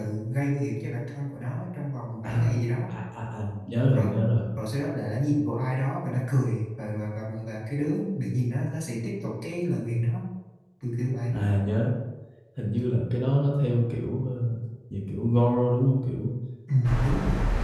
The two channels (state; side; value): identical; both; correlation 1.00